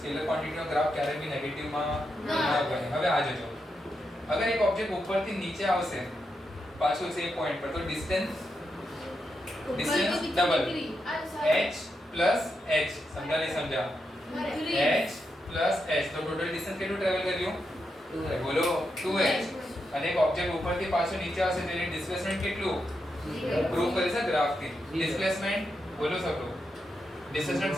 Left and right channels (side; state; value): both; normal; correlation 0.85